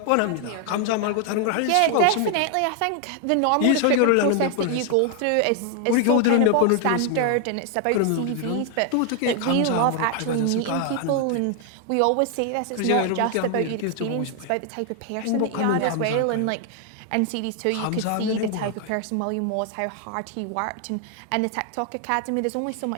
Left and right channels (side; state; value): both; different; correlation 0.00